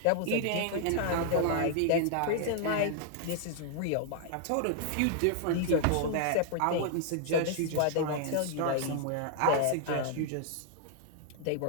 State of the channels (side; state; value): both; different; correlation -0.01